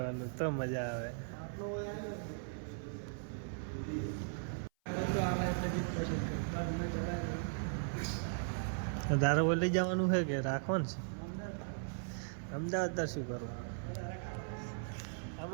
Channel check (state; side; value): silent; left; 52 dB below the other